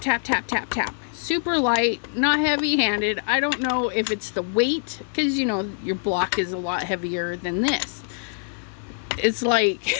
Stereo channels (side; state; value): right; silent; digital silence